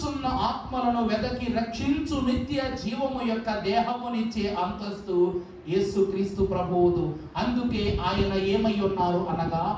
ఆత్మలను వెదకి రక్షించు నిత్య జీవము యొక్క దేహమునిచ్చే అంతస్తు యేసుక్రీస్తు ప్రభువుదు. అందుకే ఆయన ఏమై ఉన్నారు అనగా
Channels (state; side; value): identical; both; correlation 1.00